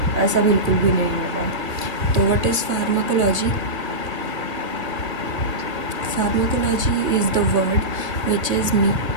ऐसा बिल्कुल भी नहीं होगा। तो what is pharmacology? Pharmacology is the word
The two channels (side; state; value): left; late; 1.6 ms